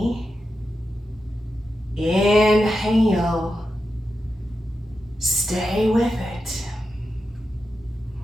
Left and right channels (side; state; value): both; normal; correlation 0.89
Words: Inhale. Stay with it.